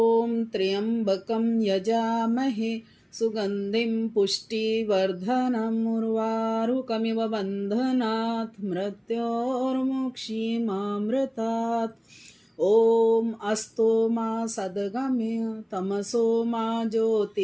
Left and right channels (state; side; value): identical; both; correlation 1.00